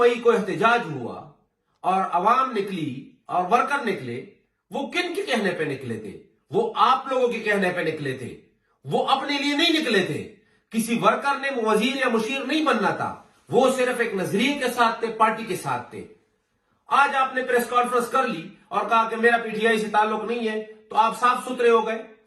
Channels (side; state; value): both; identical; correlation 1.00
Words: को एहतजाज हुआ और अवाम निकली और वर्कर निकले, वो किन के कहने पे निकले थे? वो आप लोगों के कहने पे निकले थे। वो अपने लिए नहीं निकले थे। किसी वर्कर ने वजीर या मुशीर नहीं बनना था, वो सिर्फ एक नजरिए के साथ थे, पार्टी के साथ थे। आज आपने प्रेस कॉन्फ्रेंस कर ली और कहा कि मेरा पीटीआई से ताल्लुक नहीं है, तो आप साफ सुथरे हो गए,